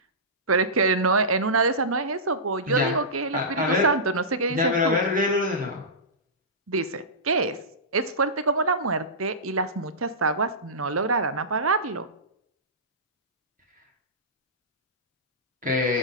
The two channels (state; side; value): normal; both; correlation -0.18